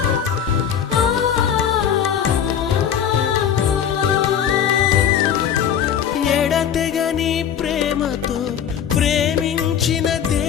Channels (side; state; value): right; quieter; 8.7 dB